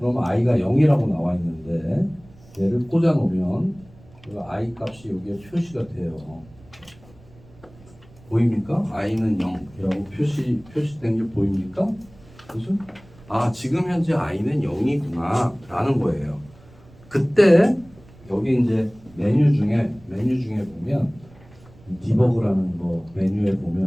i가 0이라고 나와 있는데 얘를 꽂아 놓으면 i 값이 여기에 표시가 돼요. 보입니까? i는 0이라고 표시된 게 보입니까? 그죠? 지금 현재 i는 0이구나 라는 거예요. 그때 여기 이제 메뉴 중에 보면 디버그라는 거 메뉴에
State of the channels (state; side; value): noise; right; rumble, 25 dB below the sound